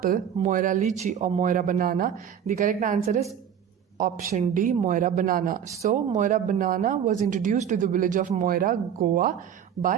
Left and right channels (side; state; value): left; quieter; 8.8 dB